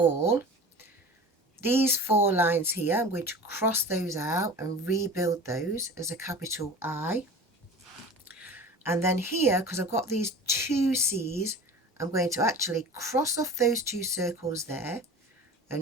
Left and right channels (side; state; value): both; normal; correlation 0.37